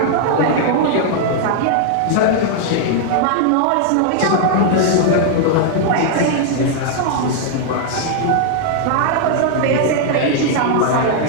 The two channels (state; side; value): different; both; correlation -0.01